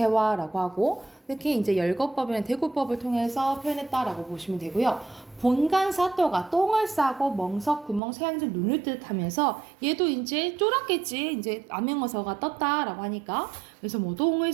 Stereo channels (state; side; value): drops out; left; at 8.0 s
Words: 하고 특히 이제 열거법이나 대구법을 통해서 표현했다라고 보시면 되고요. 본간사또가 똥을 싸고 멍석 구멍 새양질 눈을 뜻하면서 얘도 이제 쫄았겠지. 이제 암행어사가 떴다라고 하니까 그래서 뭐 똥을